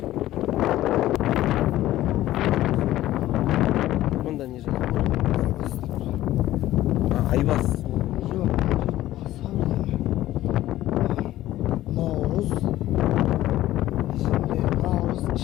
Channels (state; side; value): quieter; right; 14.7 dB